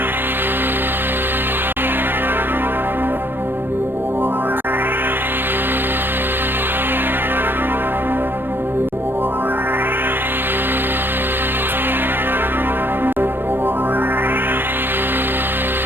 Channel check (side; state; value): left; late; 0.096 ms